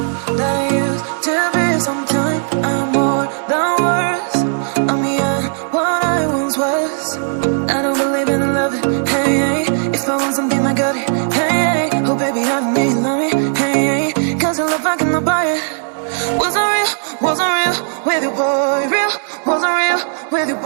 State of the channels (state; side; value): silent; left; digital silence